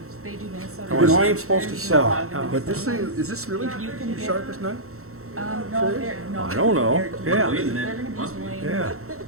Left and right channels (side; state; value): left; late; 0.63 ms